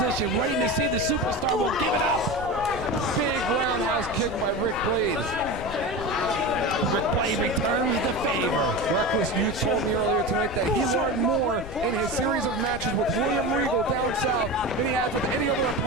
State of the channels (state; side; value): noise; left; rumble, 11 dB below the sound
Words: waiting to see if the superstar will give it up. Big roundhouse kick by Rick Blade. Rick Blade returns the favor. Reckless Youth told me earlier tonight that he learned more in his series of matches with William Regal down south than he has with any other